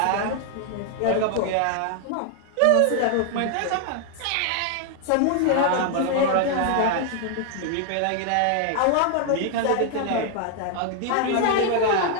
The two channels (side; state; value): both; different; correlation 0.00